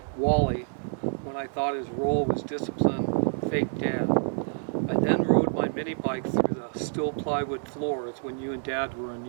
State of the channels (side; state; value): left; silent; digital silence